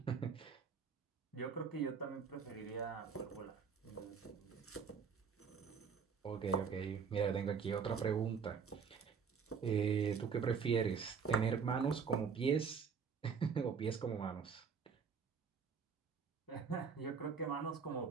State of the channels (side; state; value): left; quieter; 6.0 dB